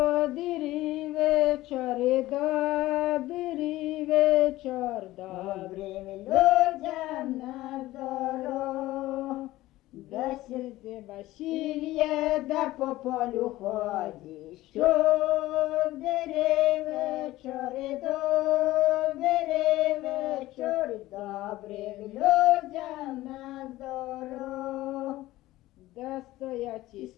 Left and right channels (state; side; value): quieter; right; 16.8 dB